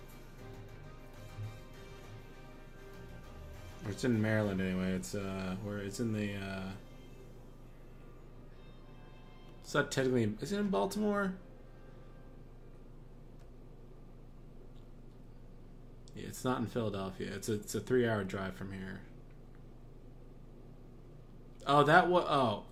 Or it's in Maryland anyway. It's where it's in the it's not technically, is it in Baltimore? Yeah, it's not in Philadelphia. It's a 3-hour drive from here. Oh, that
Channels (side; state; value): both; identical; correlation 1.00